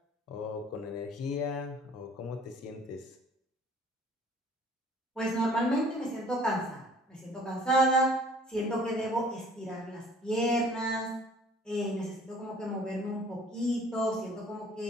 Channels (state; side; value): normal; both; correlation 0.53